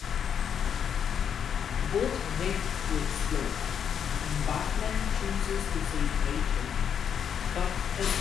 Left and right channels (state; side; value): quieter; right; 8.0 dB